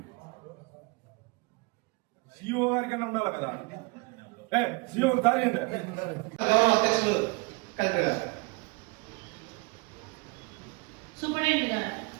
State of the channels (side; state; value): left; quieter; 27.8 dB